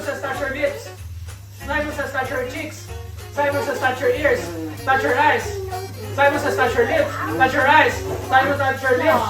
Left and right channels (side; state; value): both; identical; correlation 1.00